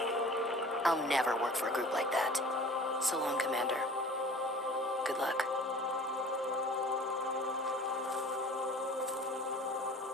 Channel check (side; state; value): both; normal; correlation 0.45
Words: I'll never work for a group like that. So long, Commander. Good luck.